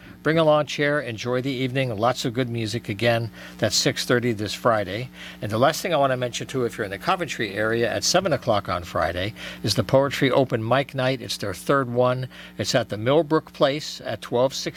Bring a lawn chair, enjoy the evening, lots of good music again. That's 6:30 this Friday. And the last thing I want to mention too, if you're in the Coventry area, at 7 o'clock on Friday is the Poetry Open Mic Night. It's their third one. It's at the Millbrook Place at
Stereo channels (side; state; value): both; identical; correlation 1.00